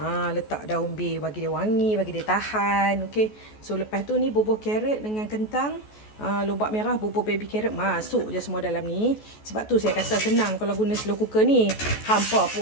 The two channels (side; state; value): right; late; 14 ms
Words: Letak daun bay bagi dia wangi, bagi dia tahan. Okey. So lepas tu ni bubuh carrot dengan kentang. Lobak merah, bubur baby carrot masuk je semua dalam ni. Sebab tu saya kata senang kalau guna slow cooker ni. Hampa